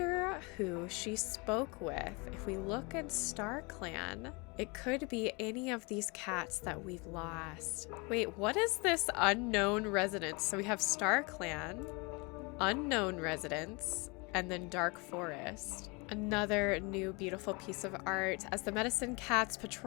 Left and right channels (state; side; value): quieter; right; 28.8 dB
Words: who she spoke with. If we look at Star Clan, it could be any of these cats that we've lost. Wait, what is this unknown residence? So we have Star Clan, unknown residence, and then Dark Forest. Another new beautiful piece of art. As the Medicine Cat's